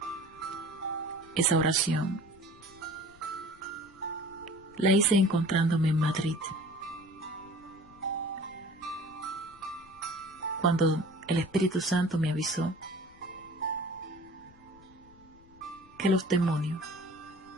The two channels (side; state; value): left; noise; rumble, 25 dB below the sound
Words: Esa oración la hice encontrándome en Madrid, cuando el Espíritu Santo me avisó que los demonios